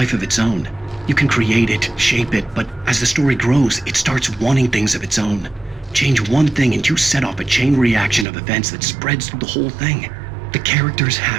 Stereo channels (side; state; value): left; drops out; at 8.2 s